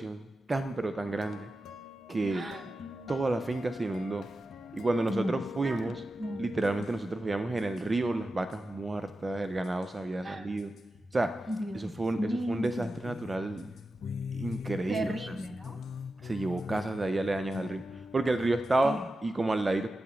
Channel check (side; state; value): both; normal; correlation 0.92